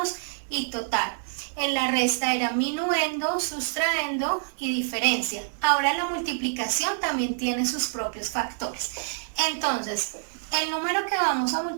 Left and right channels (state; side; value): silent; left; digital silence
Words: y total. En la resta era minuendo, sustraendo y diferencia. Ahora la multiplicación también tiene sus propios factores. Entonces, el número que vamos a